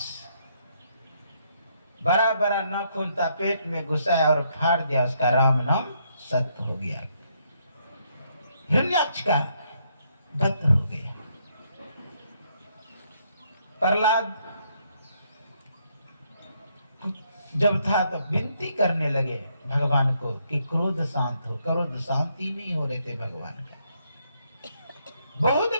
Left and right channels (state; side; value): inverted; both; correlation -0.73